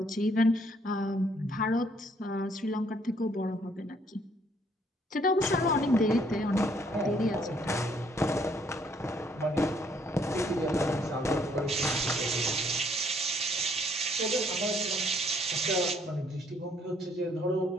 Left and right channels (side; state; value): both; normal; correlation 0.66